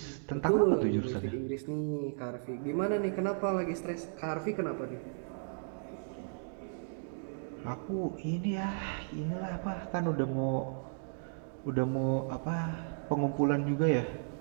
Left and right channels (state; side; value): silent; left; digital silence